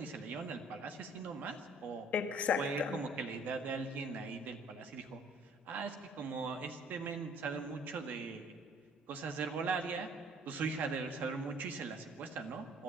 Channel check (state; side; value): normal; both; correlation 0.56